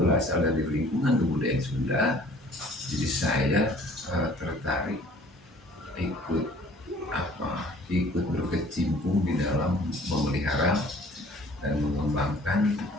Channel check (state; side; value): normal; both; correlation 0.53